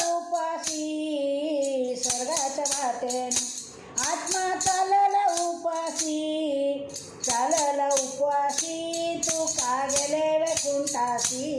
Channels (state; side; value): identical; both; correlation 1.00